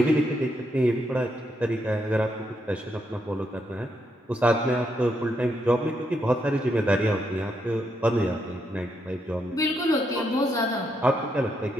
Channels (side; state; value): both; normal; correlation 0.79